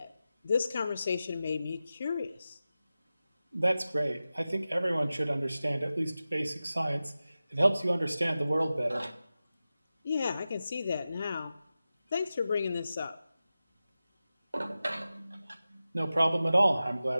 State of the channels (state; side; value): inverted; both; correlation -0.94